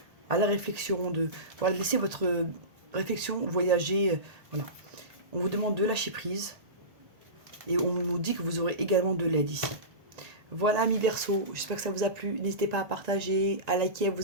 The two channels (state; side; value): late; left; 1.9 ms